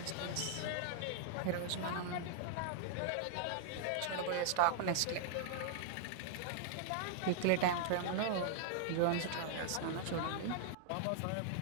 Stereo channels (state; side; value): different; both; correlation -0.01